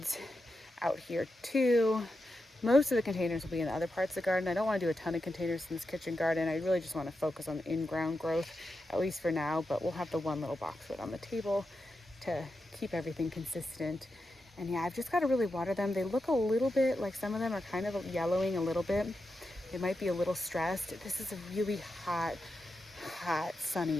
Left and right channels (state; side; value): normal; both; correlation 0.88